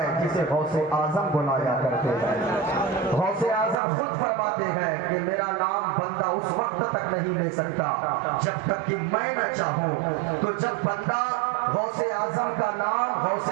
جسے غوث اعظم بلایا کرتے ہیں۔ غوث اعظم خود فرماتے ہیں کہ میرا نام بندہ اس وقت تک نہیں لے سکتا جب تک کہ میں نہ چاہوں۔ تو جب بندہ غوث اعظم کا نام غوث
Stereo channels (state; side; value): drops out; left; at 3.8 s